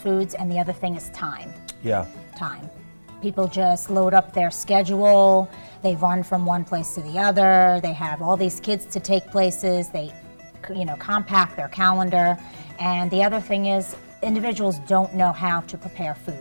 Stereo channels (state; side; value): inverted; both; correlation -1.00